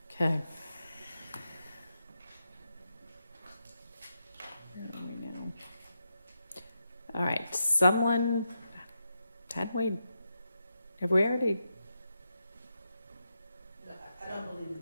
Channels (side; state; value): both; inverted; correlation -0.85